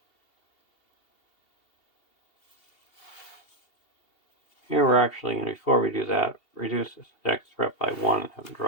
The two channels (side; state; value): right; late; 2.7 ms